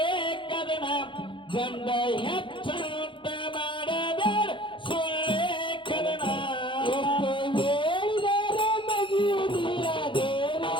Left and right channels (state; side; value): late; right; 0.24 ms